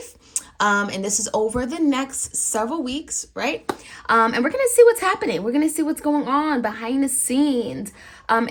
and this is over the next several weeks, right? And we're going to see what's happening. We're going to see what's going on behind the scenes,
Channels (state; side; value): identical; both; correlation 1.00